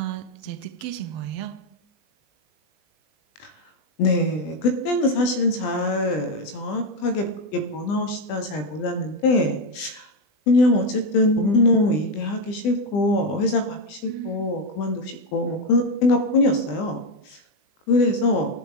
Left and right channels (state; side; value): late; right; 20 ms